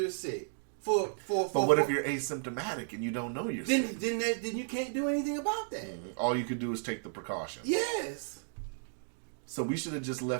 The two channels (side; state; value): left; silent; digital silence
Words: sick, but what if you're asymptomatic and you don't know you're sick? Then you can't do anything about that. All you could do is take the precautions. Yes. So we should have just